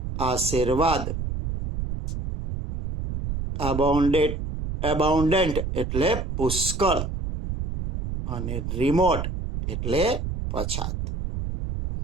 આશીર્વાદ, એબાઉન્ડન્ટ એટલે પુષ્કળ, અને રિમોટ એટલે પછાત.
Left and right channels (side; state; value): right; noise; rumble, 4 dB below the sound